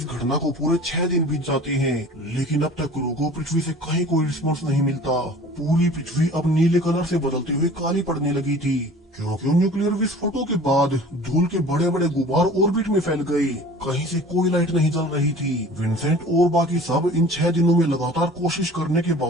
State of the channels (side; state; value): both; normal; correlation 0.44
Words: घटना को पूरे 6 दिन बीत जाते हैं, लेकिन अब तक क्रू को पृथ्वी से कहीं कोई रिस्पॉन्स नहीं मिलता। पूरी पृथ्वी अब नीले कलर से बदलते हुए काली पड़ने लगी थी क्योंकि न्यूक्लियर विस्फोटों के बाद धूल के बड़े बड़े गुबार ऑर्बिट में फैल गए। कहीं से कोई लाइट नहीं जल रही थी। विंसेंट और बाकी सब इन 6 दिनों में लगातार कोशिश करने के